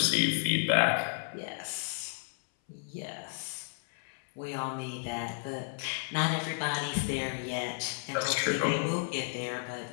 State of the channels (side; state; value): right; silent; 56 dB below the other